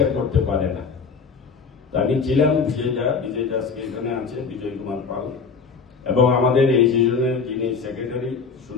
করতে পারে না। আমি ছিলাম বিজয় দাসকে এখানে আছে, বিজয় কুমার পাল, এবং আমাদের এই সিজনের যিনি সেক্রেটারি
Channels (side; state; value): right; quieter; 5.3 dB